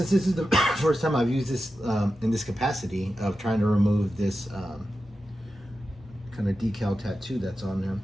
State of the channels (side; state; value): both; normal; correlation 0.91